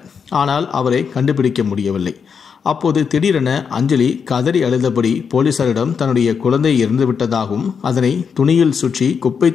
ஆனால் அவரை கண்டுபிடிக்க முடியவில்லை. அப்போது திடீரென அஞ்சலி கதறி அழுதபடி போலீசாரிடம் தன்னுடைய குழந்தை இறந்துவிட்டதாகவும் அதனை துணியில் சுற்றி குப்பை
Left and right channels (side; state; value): right; quieter; 6.4 dB